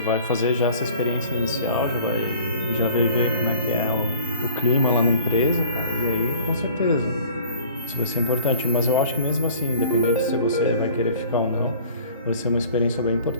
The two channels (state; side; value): inverted; both; correlation -0.48